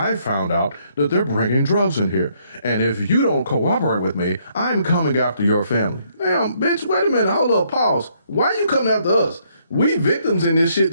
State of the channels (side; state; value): both; inverted; correlation -0.70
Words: found out that they're bringing drugs in here. And if you don't cooperate with me, I'm coming after your family. Damn, bitch, wait a minute, hold up, pause. Why you coming after us? We victims in this shit